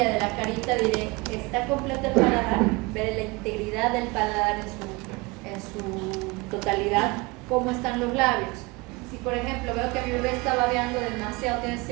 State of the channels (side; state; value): left; quieter; 25.2 dB